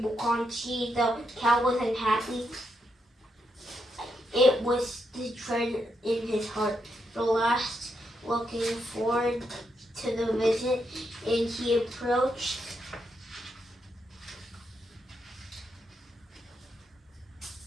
Bukonchi. The Count was unhappy. It was the dread in his heart. The last, looking forward to the visit, and he approached.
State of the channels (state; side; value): normal; both; correlation 0.81